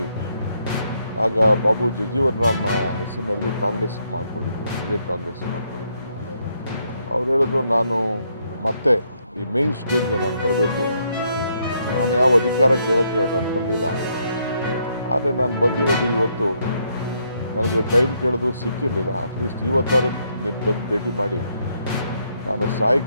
ಆಗ ಬಾಬು ಜಗಜೀವನ್ ರಾಮ್ ಹೆಸರಿನಲ್ಲಿ ಕಾಂಗ್ರೆಸ್ ಮಾಡಿಕೊಂಡಿದ್ದೆ, ವಿಜಯ್ ಕಾಂಗ್ರೆಸ್ ಮಾಡಿಕೊಂಡಿದ್ದೆ. ಅವ್ರು ಹೇಳಿದ್ರು ನಾನು ಮತ್ತೆ ಈ ಮೇನ್ ಸ್ಟ್ರೀಮ್ಗೆ ನಾನು ಬರಬೇಕು. ನಾನು ಯಾವ ಅಧಿಕಾರ ಕೇಳೋಕ್ಕೆ ನಾನು ಬರಲಿಲ್ಲ. ಆದರೆ ನಾನು ಬಂದಿರೋದು ಇವತ್ತು ನನಗೆ ಟೈಮ್ ಕೇಳಿದ್ರು ಸಿಕ್ಕಿರಲಿಲ್ಲ. ಅಟ್ಲೀಸ್ಟ್ ಇವತ್ತಾರು ನೀನು ಬಂದು ಭೇಟಿ ಮಾಡಿ ನಾನು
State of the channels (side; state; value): both; inverted; correlation -0.74